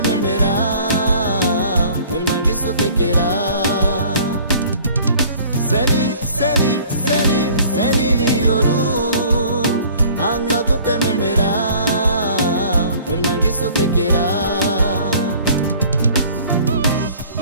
memerás, el mangueso te quiera.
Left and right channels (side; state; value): both; inverted; correlation -0.51